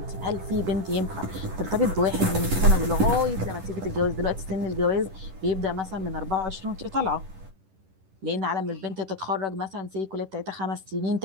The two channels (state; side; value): late; left; 10 ms